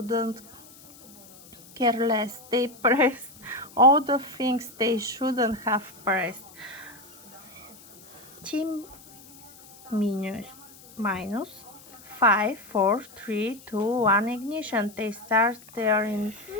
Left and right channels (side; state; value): left; noise; hiss, 22 dB below the sound